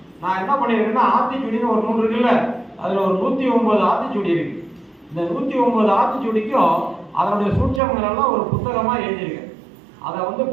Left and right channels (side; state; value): left; drops out; at 7.8 s